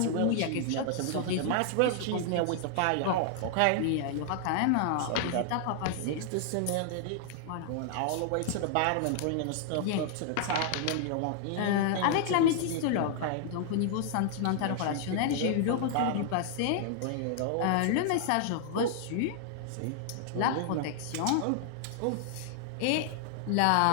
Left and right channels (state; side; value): different; both; correlation 0.00